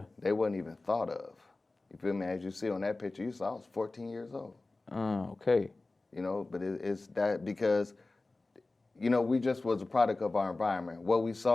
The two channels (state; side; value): quieter; right; 3.2 dB